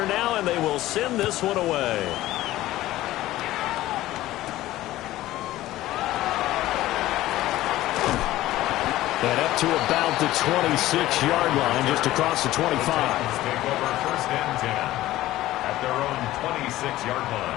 now, and they will send this one away. And up to about the 26-yard line, just across the 25. Take over 1st and 10 at their own 26-yard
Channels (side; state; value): right; quieter; 15.7 dB